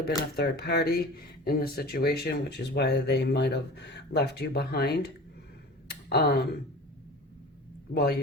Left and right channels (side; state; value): both; normal; correlation 0.37